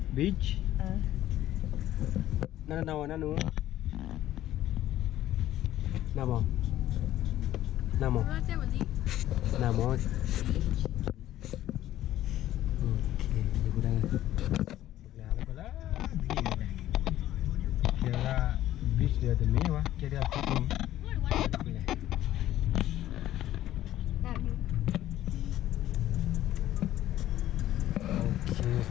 Beach. Nanu. Nama. Okey, ibu dah. Sebelah lah. Kira beach dia tu mewah, kira fitting. Okey.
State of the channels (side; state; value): right; quieter; 13.5 dB